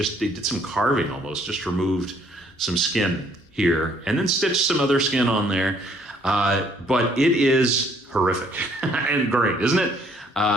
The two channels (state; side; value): normal; both; correlation 0.64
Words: did some carving almost, just removed some skin here and then stitched some other skin on there. But it is horrific and great, isn't it?